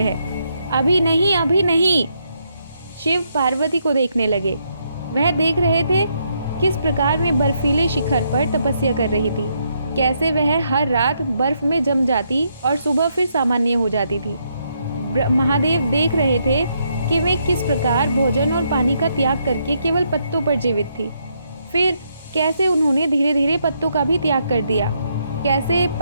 है। अभी नहीं, अभी नहीं। शिव पार्वती को देखने लगे। वह देख रहे थे किस प्रकार वे बर्फीले शिखर पर तपस्या कर रही थी, कैसे वह हर रात बर्फ में जम जाती और सुबह फिर सामान्य हो जाती थी। महादेव देख रहे थे कि वे किस प्रकार भोजन और पानी का त्याग करके केवल पत्तों पर जीवित थी। फिर कैसे उन्होंने धीरे धीरे पत्तों का भी त्याग कर दिया। कैसे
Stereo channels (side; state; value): both; inverted; correlation -0.76